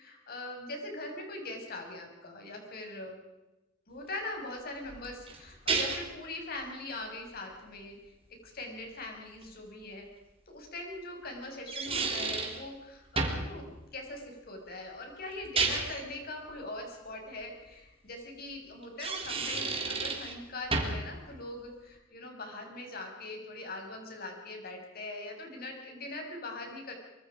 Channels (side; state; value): both; normal; correlation 0.12